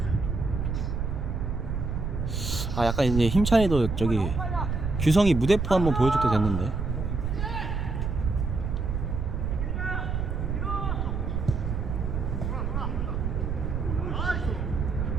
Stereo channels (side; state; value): right; noise; rumble, 2 dB below the sound